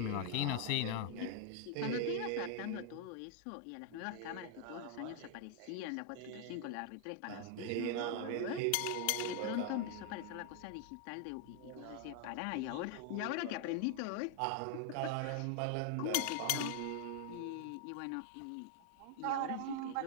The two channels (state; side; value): different; both; correlation 0.00